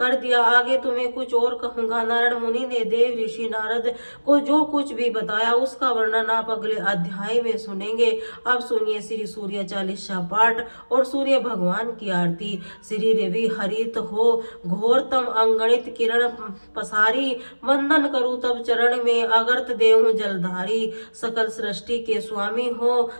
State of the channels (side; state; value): both; inverted; correlation -1.00